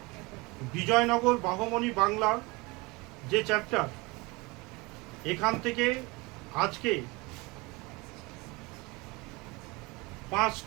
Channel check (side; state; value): left; quieter; 25.0 dB